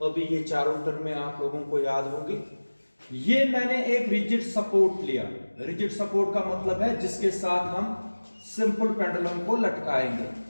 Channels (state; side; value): inverted; both; correlation -1.00